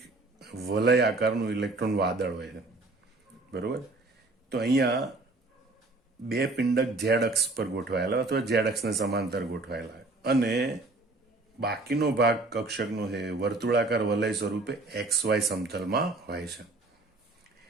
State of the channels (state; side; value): quieter; left; 3.1 dB